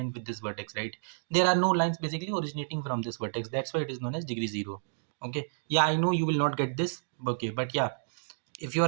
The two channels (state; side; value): silent; left; digital silence